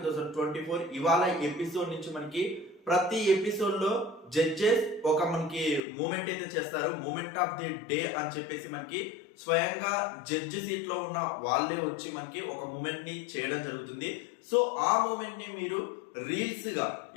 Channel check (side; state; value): right; drops out; at 5.8 s